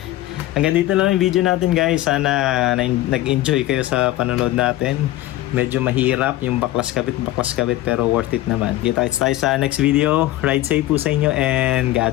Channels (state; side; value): quieter; right; 15.7 dB